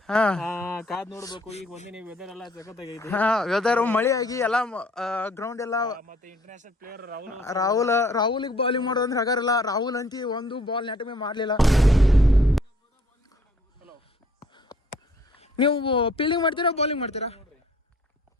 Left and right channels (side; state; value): both; normal; correlation 0.59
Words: ಕಾದ್ ನೋಡ್ಬೇಕು. ಈಗ ಒಂದಿನ ವೆದರ್ ಎಲ್ಲ ಸಖತ್ ಆಗೈತಿ. ವೆದರ್ ಮಳೆ ಆಗಿ ಎಲ್ಲ ಗ್ರೌಂಡ್ ಎಲ್ಲ. ಮತ್ತೆ ಇಂಟರ್ನ್ಯಾಷನಲ್ ಪ್ಲೇಯರ್ ರಾಹುಲ್ಗೆ ಬೌಲಿಂಗ್ ಮಾಡೋದಂದ್ರೆ ಹಗಾರಲ್ಲ. ರಾಹುಲ್ ಅಂತಿ ಒಂದು ಬಾಲ್ ನೆಟ್ ಮೇಲೆ ಮಾಡಲಿಲ್ಲ. ನೀವು ಫೀಲ್ಡಿಂಗ್ ಮಾಡ್ತೀರಾ ಬೌಲಿಂಗ್ ಮಾಡ್ತೀರಾ?